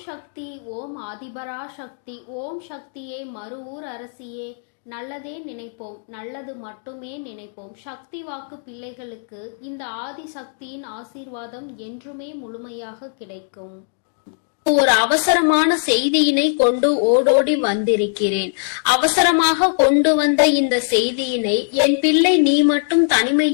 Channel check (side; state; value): right; silent; digital silence